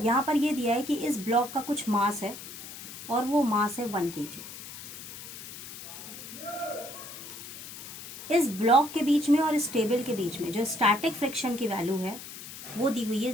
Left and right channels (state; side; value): noise; left; hiss, 12 dB below the sound